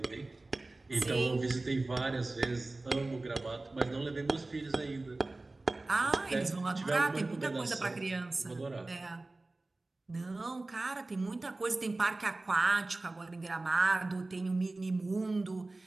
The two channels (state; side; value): quieter; left; 3.1 dB